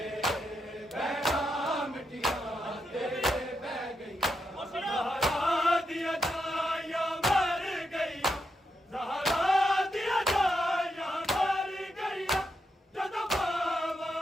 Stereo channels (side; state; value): both; normal; correlation 0.83